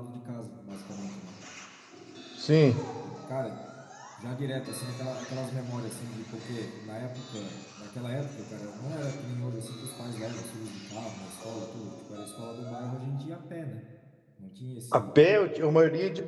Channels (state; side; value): identical; both; correlation 1.00